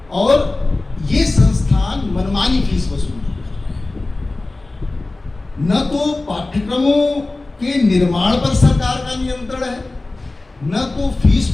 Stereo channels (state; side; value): quieter; right; 3.1 dB